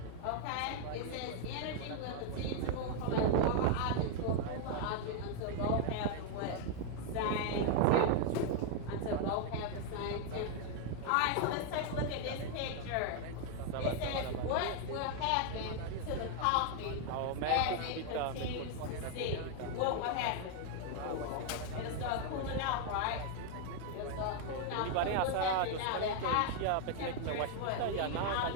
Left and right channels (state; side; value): different; both; correlation 0.00